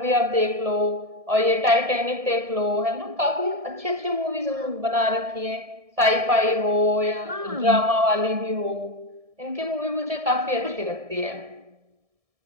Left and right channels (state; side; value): late; left; 1.7 ms